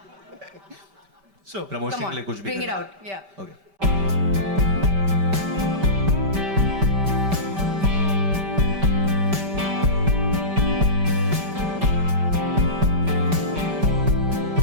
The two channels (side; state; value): left; late; 5.1 ms